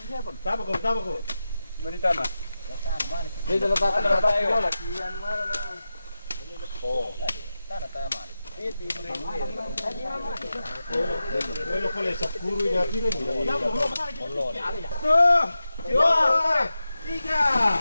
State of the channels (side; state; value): both; inverted; correlation -0.92